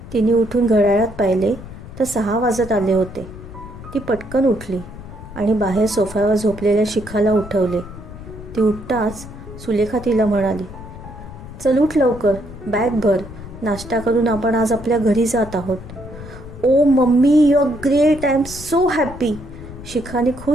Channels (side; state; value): left; noise; rumble, 14 dB below the sound